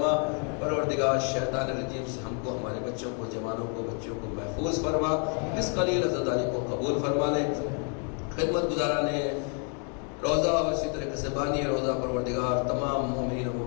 پروردگار شیطان الرجیم سے ہم کو ہمارے بچوں کو جوانوں کو بچوں کو محفوظ فرما، اس قلیل عزاداری کو قبول فرما لے۔ خدمت گزاران روزہ اور اسی طریقے سے بانی روزہ پروردگار تمام مومنین و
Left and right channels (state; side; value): quieter; right; 39.7 dB